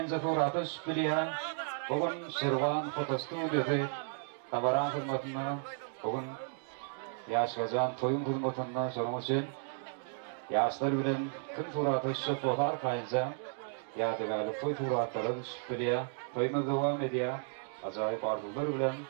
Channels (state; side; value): silent; left; 55 dB below the other